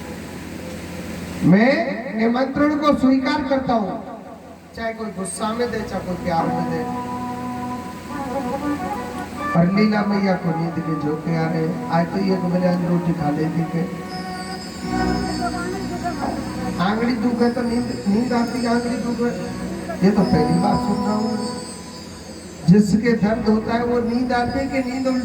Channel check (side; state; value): both; identical; correlation 1.00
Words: मैं निमंत्रण को स्वीकार करता हूँ, चाहे कोई गुस्सा में दे चाहे कोई प्यार में दे। और लीला मैया को नींद के झोंके आ रहे, आज तो ये बजान रोटी खा लेती के आंगड़ी दुख है तो नींद आती, आंगड़ी दुख है, ये तो पहली बार सुन रहा हूँ। जिसके दर्द होता है वो नींद आती है कि नींद